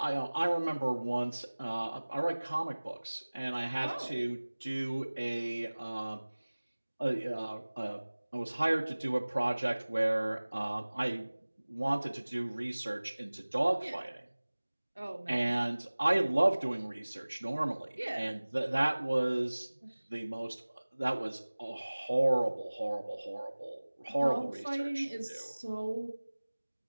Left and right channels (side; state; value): both; inverted; correlation -1.00